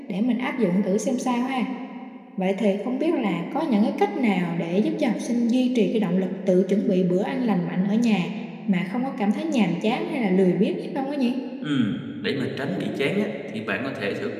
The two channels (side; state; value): both; identical; correlation 1.00